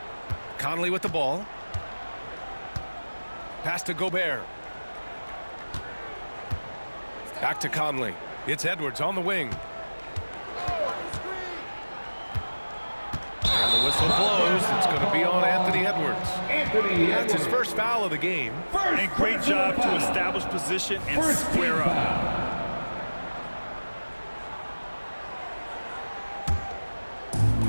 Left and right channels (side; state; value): both; inverted; correlation -1.00